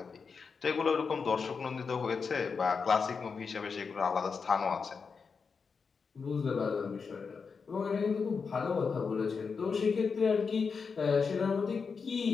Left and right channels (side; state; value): right; quieter; 5.4 dB